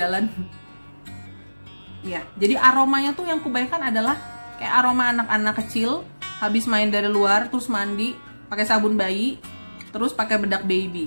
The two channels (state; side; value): inverted; both; correlation -1.00